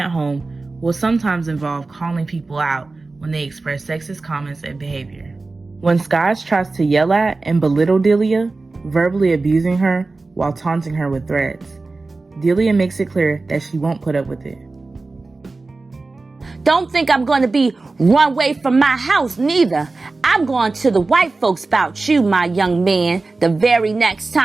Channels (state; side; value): quieter; left; 3.5 dB